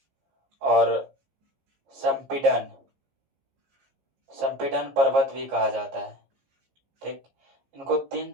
और संपीडन, संपीडन पर्वत भी कहा जाता है, ठीक। इनको तीन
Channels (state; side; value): late; left; 15 ms